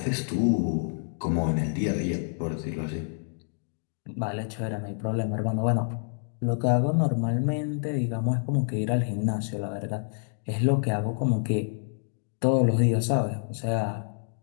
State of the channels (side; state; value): right; silent; digital silence